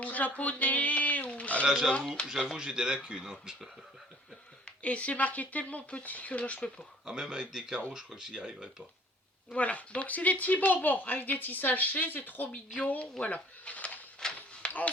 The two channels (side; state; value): both; normal; correlation 0.54